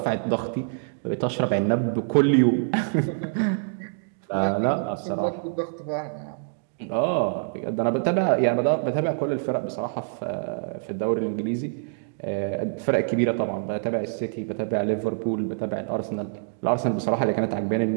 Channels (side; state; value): left; silent; digital silence